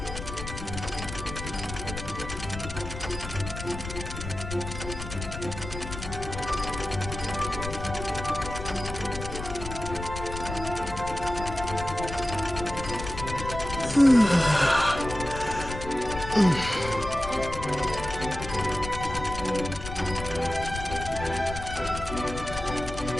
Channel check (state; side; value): noise; left; rumble, 8 dB below the sound